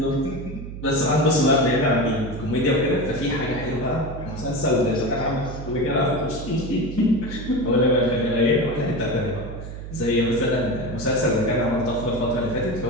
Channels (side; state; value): right; noise; hum, 10 dB below the sound